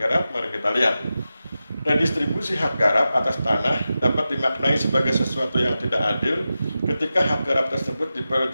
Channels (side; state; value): both; inverted; correlation -0.92